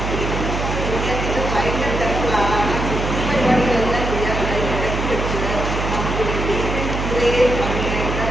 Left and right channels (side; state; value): right; noise; hum, 3 dB below the sound